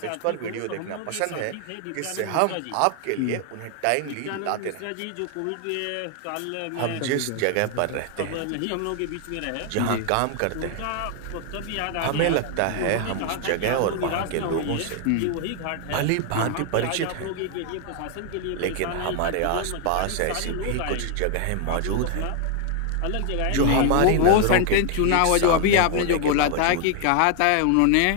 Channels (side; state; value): both; different; correlation 0.00